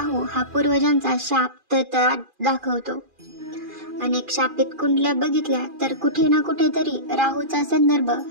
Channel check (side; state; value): left; late; 2.4 ms